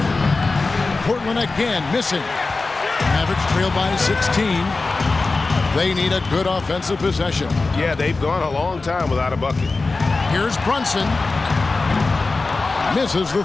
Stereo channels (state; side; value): quieter; right; 3.7 dB